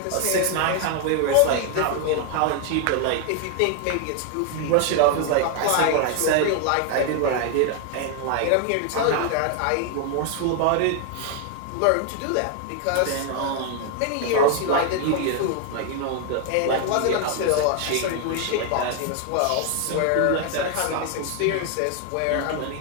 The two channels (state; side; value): different; both; correlation 0.00